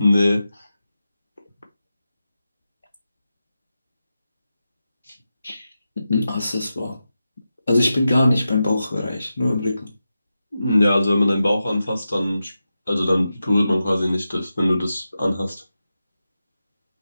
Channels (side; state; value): both; inverted; correlation -0.91